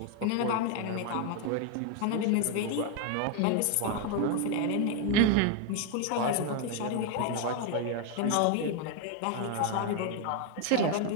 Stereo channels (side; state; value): both; different; correlation 0.01